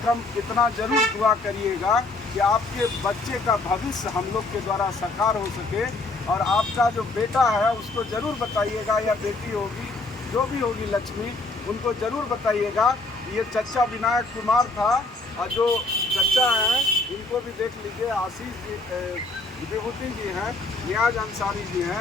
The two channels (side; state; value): right; quieter; 3.1 dB